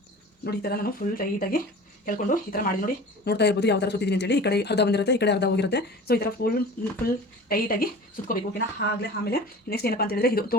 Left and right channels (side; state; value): both; normal; correlation 0.39